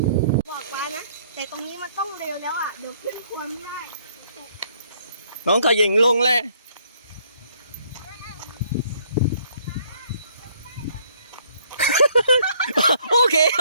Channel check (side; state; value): both; inverted; correlation -0.64